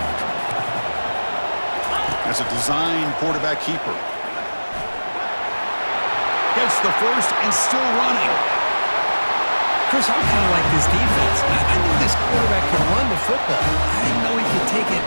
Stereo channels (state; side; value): inverted; both; correlation -1.00